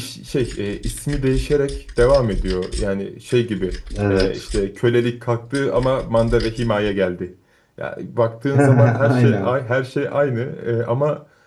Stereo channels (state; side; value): identical; both; correlation 1.00